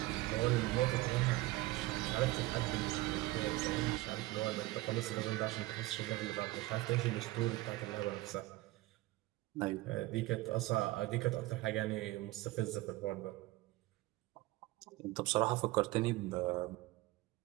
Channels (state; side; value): quieter; left; 19.0 dB